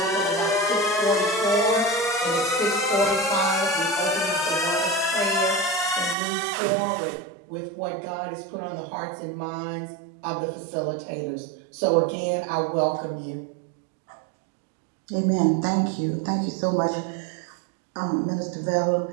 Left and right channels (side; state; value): left; drops out; at 6.2 s